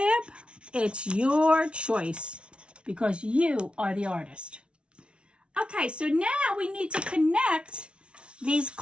it's your choice because you are the artist. Okay, so now we need to connect these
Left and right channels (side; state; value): left; late; 0.059 ms